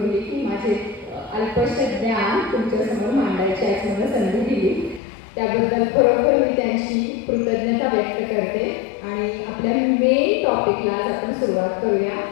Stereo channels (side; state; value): right; drops out; at 5.0 s